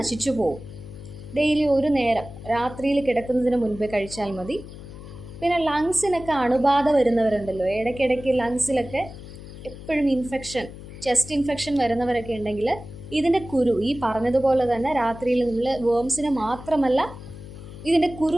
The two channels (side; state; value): left; noise; hum, 14 dB below the sound